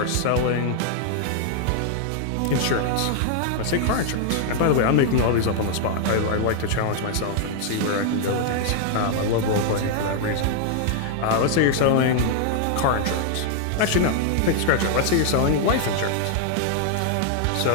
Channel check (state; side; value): different; both; correlation -0.01